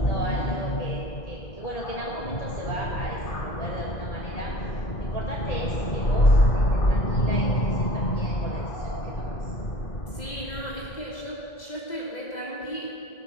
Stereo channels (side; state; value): right; late; 2.0 ms